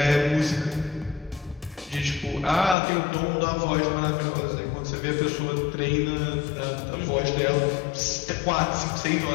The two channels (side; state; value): right; drops out; at 2.8 s